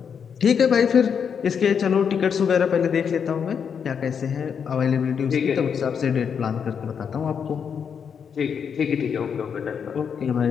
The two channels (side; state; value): right; quieter; 7.1 dB